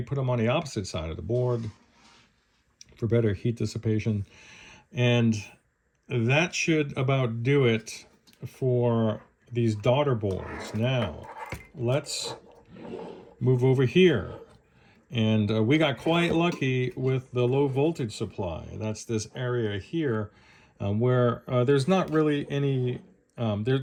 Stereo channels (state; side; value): identical; both; correlation 1.00